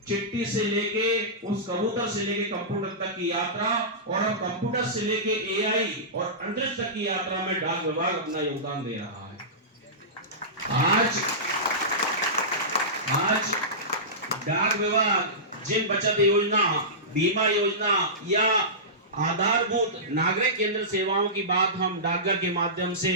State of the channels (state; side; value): normal; both; correlation -0.19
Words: चिट्ठी से लेके उस कबूतर से लेके कंप्यूटर तक की यात्रा, और अब कंप्यूटर से लेके एआई और अंतरिक्ष तक की यात्रा में डाक विभाग अपना योगदान दे रहा है। आज डाक विभाग जिन बचत योजना, बीमा योजना या आधारभूत नागरिक केंद्र सेवाओं की बात हम डाकघर के माध्यम